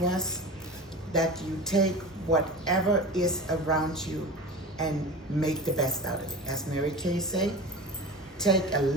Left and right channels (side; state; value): both; normal; correlation 0.32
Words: that you take whatever is around you and make the best out of it. As Mary Kay say, take a